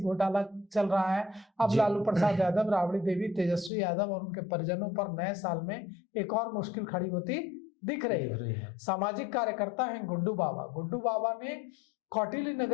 घोटाला चल रहा है। अब लालू प्रसाद यादव, राबड़ी देवी, तेजस्वी यादव और उनके परिजनों पर नए साल में एक और मुश्किल खड़ी होती दिख रही है। सामाजिक कार्यकर्ता हैं गुड्डू बाबा। गुड्डू बाबा ने कौटिल्य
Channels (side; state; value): right; drops out; at 3.7 s